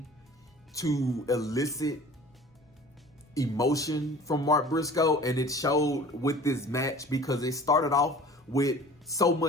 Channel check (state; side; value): normal; both; correlation 0.44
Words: to elicit emotion from Mark Briscoe, and it showed with this match, because it started off with so